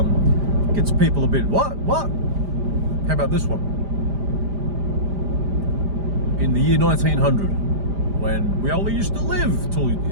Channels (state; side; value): late; left; 5.0 ms